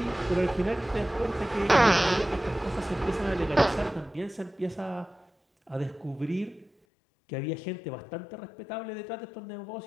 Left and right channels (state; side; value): drops out; right; at 6.7 s